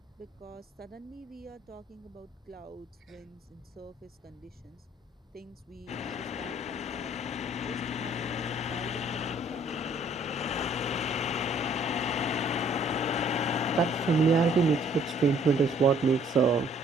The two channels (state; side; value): normal; both; correlation 0.60